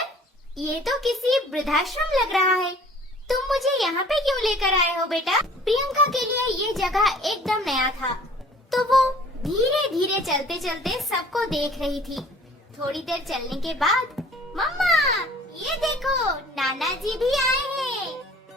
ये तो किसी वृद्धाश्रम लग रहा है, तुम मुझे यहाँ पे क्यों लेकर आए हो बेटा? प्रियंका के लिए ये जगह एकदम नया था, तो वो धीरे धीरे चलते चलते सबको देख रही थी। थोड़ी देर चलने के बाद, मम्मा ये देखो, नाना जी भी आए हैं।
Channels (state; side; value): normal; both; correlation 0.51